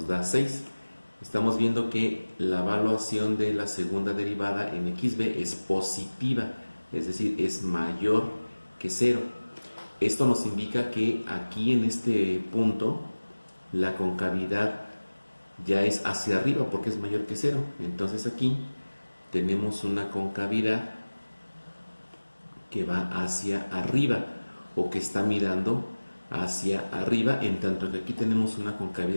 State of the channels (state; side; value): inverted; both; correlation -1.00